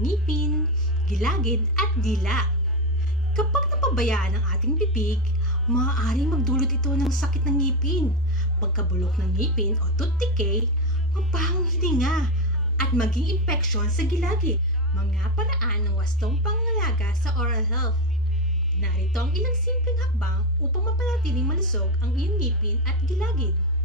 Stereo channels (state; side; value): normal; both; correlation 0.10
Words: gilagid at dila. Kapag napabayaan ang ating bibig, maaaring magdulot ito ng sakit ng ngipin, pagkabulok ng ngipin o tooth decay, mabahong hininga, at maging impeksyon sa gilagid. Mga paraan ng wastong pangangalaga sa oral health. Narito ang ilang simpleng hakbang upang mapanatiling malusog ang iyong ngipin at gilagid.